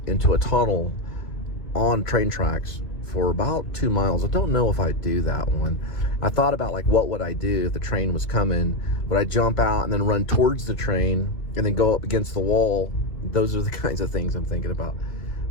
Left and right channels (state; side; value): late; right; 2.4 ms